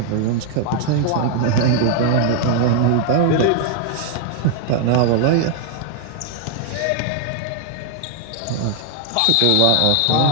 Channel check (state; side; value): different; both; correlation 0.00